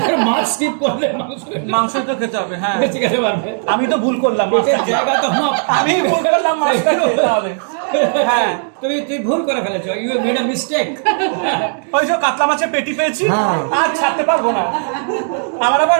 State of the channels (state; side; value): silent; left; digital silence